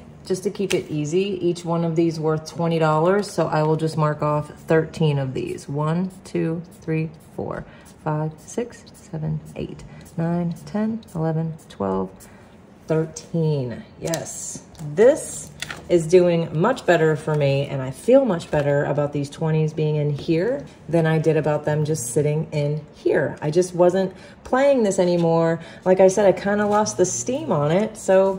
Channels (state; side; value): identical; both; correlation 1.00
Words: just to keep it easy, each one of these worth $20. So I will just mark off 13 of these. 1, 2, 3, 4, 5, 6, 7, 8, 9, 10, 11, 12, 13. Yes, this is doing much better for me, and I feel much better about these 20s being in here than I did about them just sitting in here. I just wasn't playing this anymore. Like I said, I kind of lost the steam on it,